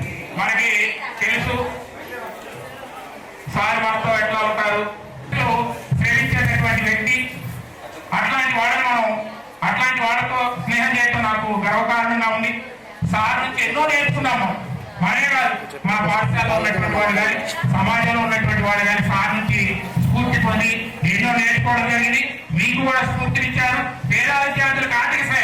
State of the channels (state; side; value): identical; both; correlation 1.00